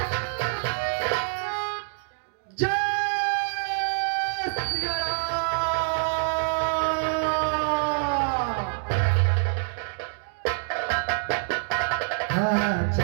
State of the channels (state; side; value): silent; left; digital silence